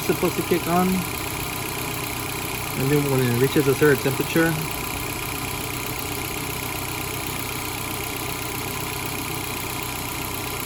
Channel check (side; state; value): both; identical; correlation 1.00